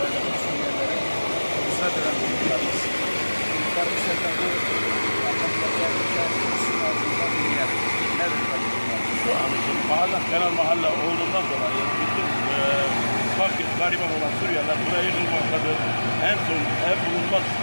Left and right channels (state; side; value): inverted; both; correlation -1.00